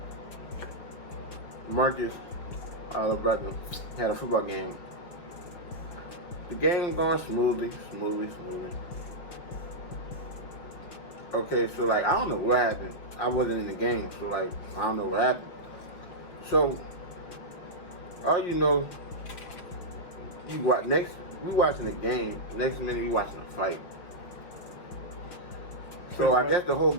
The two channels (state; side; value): late; right; 5.7 ms